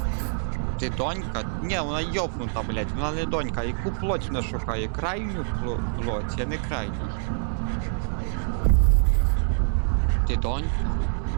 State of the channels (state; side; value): silent; left; digital silence